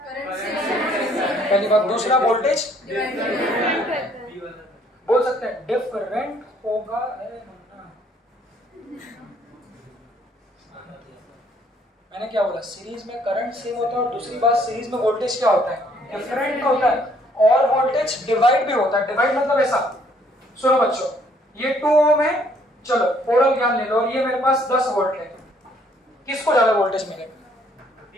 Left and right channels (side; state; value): both; normal; correlation 0.64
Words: पहली बात। दूसरा वोल्टेज बोल सकते हैं डिफरेंट होगा, मैंने क्या बोला, सीरीज में करंट सेम होता है, और दूसरी बात सीरीज में वोल्टेज क्या होता है, डिफरेंट होता है, और वोल्टेज डिवाइड भी होता है। डिवाइड मतलब ऐसा, सुनो बच्चों, ये 2 ओम है, चलो ओरल ज्ञान ले लो, और ये मेरे पास 10 वोल्ट है, किसको ज्यादा वोल्टेज मिलेगा,